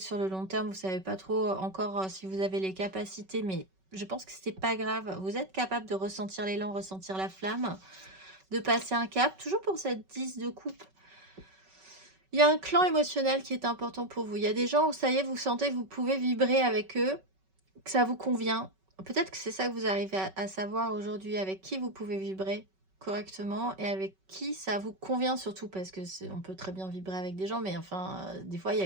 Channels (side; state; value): left; late; 5.3 ms